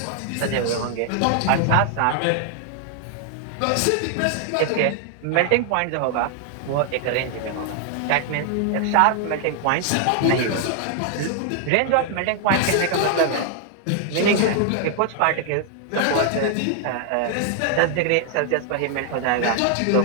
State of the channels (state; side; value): different; both; correlation 0.00